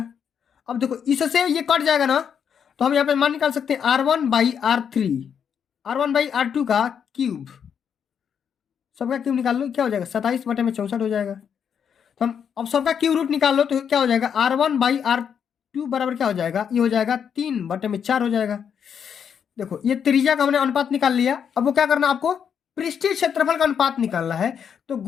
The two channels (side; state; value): right; quieter; 7.7 dB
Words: अब देखो इससे ये कट जाएगा ना, तो हम यहाँ पे मान निकाल सकते हैं R1/R3, R1/R2 का क्यूब, सबका क्यूब निकाल लो, क्या हो जाएगा 27 बटे में 64 हो जाएगा। तो हम अब सबका क्यूब रूट निकाल लो तो क्या हो जाएगा, R1/R2 बराबर क्या हो जाएगा, ये हो जाएगा 3 बटे में 4 हो जाएगा। देखो ये त्रिज्या का हमने अनुपात निकाल लिया, अब वो क्या करना, आपको पृष्ठीय क्षेत्रफल का अनुपात निकालना है। तो